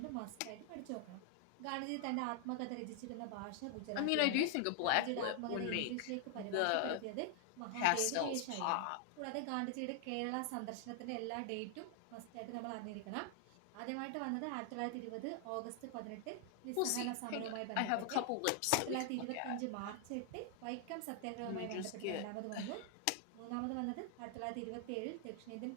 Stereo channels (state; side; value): different; both; correlation 0.00